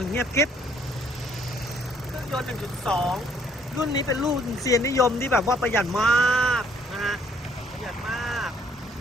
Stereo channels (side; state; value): both; normal; correlation 0.65